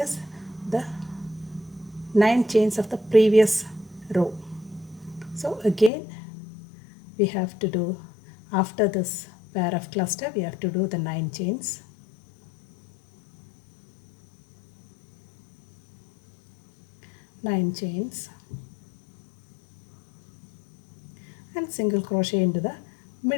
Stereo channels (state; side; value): drops out; right; at 5.9 s